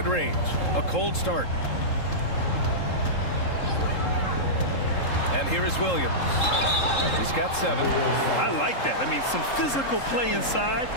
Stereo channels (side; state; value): right; late; 3.7 ms